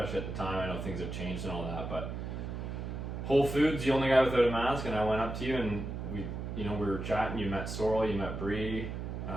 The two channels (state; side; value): noise; right; hum, 5 dB below the sound